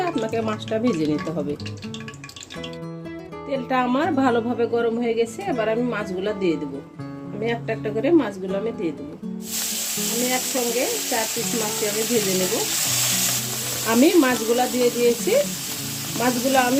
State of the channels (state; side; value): identical; both; correlation 1.00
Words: আপনাকে মাছটা ভেজে নিতে হবে। তেলটা আমার ভালোভাবে গরম হয়ে গেছে। এবার আমি মাছগুলো দিয়ে দেব। আমি একটা একটা করে মাছগুলো আমি দিয়ে দেব। আমি একসঙ্গে 4 পিস মাছ আমি ভেজে নেব। আমি মাছগুলো দিয়ে দিয়েছি। মাছগুলো